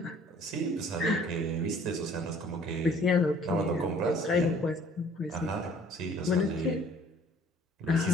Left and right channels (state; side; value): normal; both; correlation 0.55